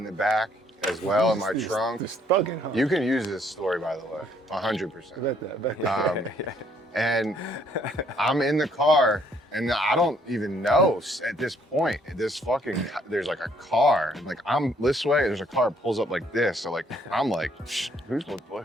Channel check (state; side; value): normal; both; correlation 0.66